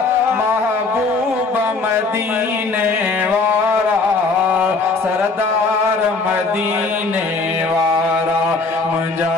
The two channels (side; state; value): right; quieter; 3.9 dB